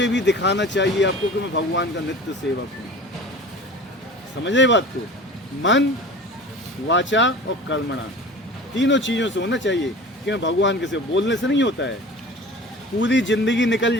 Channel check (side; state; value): both; normal; correlation 0.40